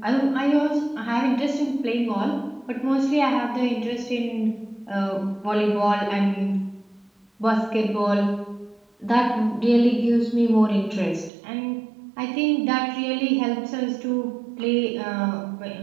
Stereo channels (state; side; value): drops out; left; at 11.3 s